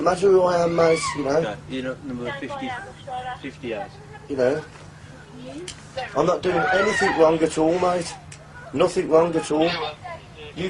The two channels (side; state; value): both; identical; correlation 1.00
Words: matter who I am, mate, you know. Okay. You're number 58. You know. I'm not doing anything wrong at all, mate. Nothing wrong at all. You